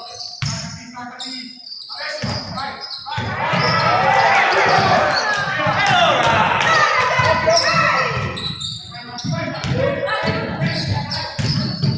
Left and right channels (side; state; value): both; identical; correlation 1.00